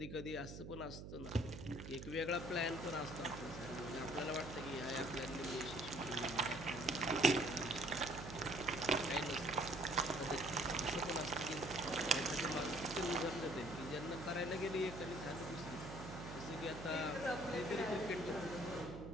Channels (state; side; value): noise; right; hum, 9 dB below the sound